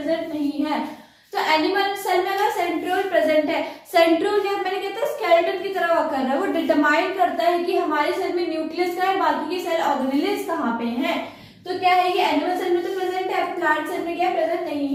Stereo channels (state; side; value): identical; both; correlation 1.00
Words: नहीं है। तो एनिमल सेल में अगर सेंट्रियोल प्रेजेंट है, सेंट्रियोल क्या मैंने कहता है स्केलेटन की तरह वर्क कर रहा है, वो डिटरमाइन करता है कि हमारे सेल में न्यूक्लियस का है, बाकी के सेल ऑर्गेनेल्स कहाँ पे हैं। तो क्या है कि एनिमल सेल में तो प्रेजेंट है, प्लांट सेल में क्या प्रेजेंट